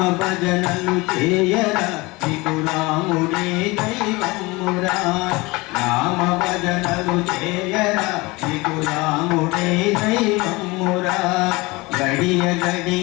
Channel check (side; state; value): right; quieter; 23.4 dB